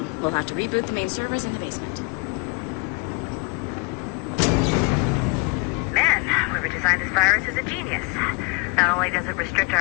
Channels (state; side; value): quieter; right; 28.2 dB